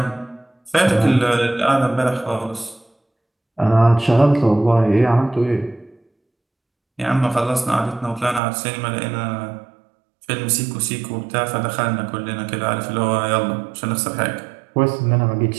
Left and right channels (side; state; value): left; drops out; at 8.4 s